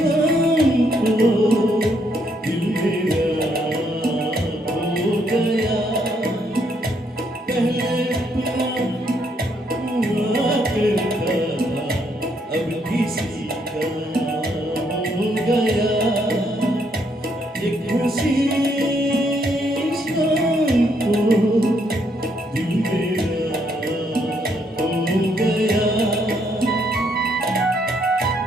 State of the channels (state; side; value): normal; both; correlation 0.73